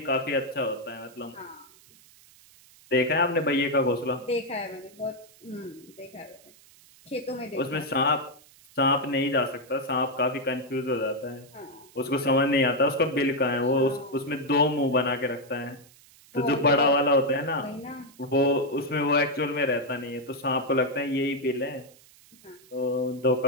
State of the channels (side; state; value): right; noise; hiss, 26 dB below the sound